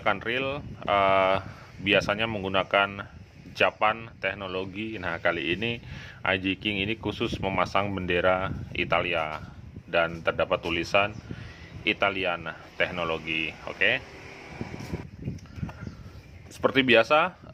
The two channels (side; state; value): both; identical; correlation 1.00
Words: reel biasanya menggunakan Japan teknologi. Nah, kali ini Aji King ini khusus memasang bendera Italia dan terdapat tulisan Italian teknologi. Oke. Seperti biasa,